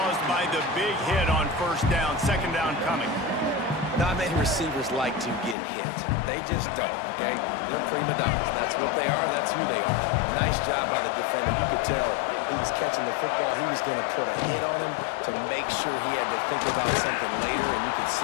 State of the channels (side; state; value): right; drops out; at 5.6 s